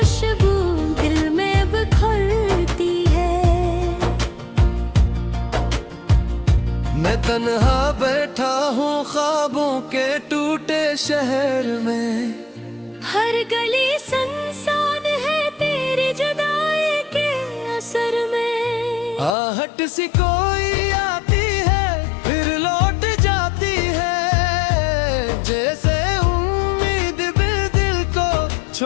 दिल में बिखरती है। मैं तन्हा बैठा हूँ ख्वाबों के टूटे शहर में, हर गली सुनसान है तेरी जुदाई के असर में। आहट सी कोई आती है फिर लौट जाती है, जैसे उम्मीद भी दिल को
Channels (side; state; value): right; drops out; at 19.4 s